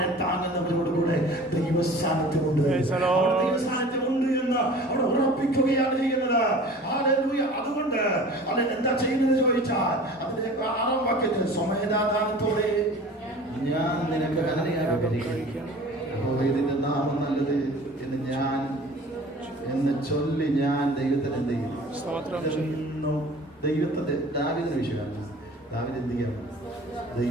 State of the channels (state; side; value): normal; both; correlation 0.43